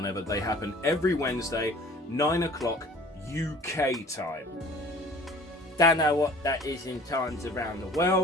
they happen. Every Wednesday, 9 o'clock UK time. Don't know what that is in times around the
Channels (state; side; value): normal; both; correlation 0.48